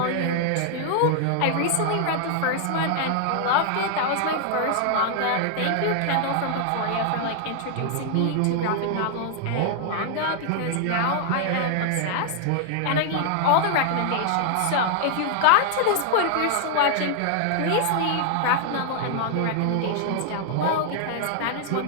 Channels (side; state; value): both; different; correlation -0.01